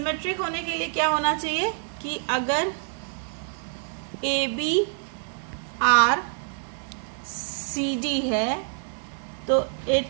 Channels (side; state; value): left; silent; digital silence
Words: होने के लिए क्या होना चाहिए कि अगर A B R C D है तो